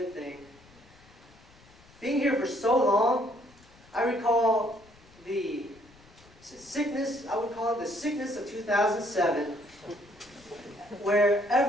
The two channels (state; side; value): noise; left; rumble, 26 dB below the sound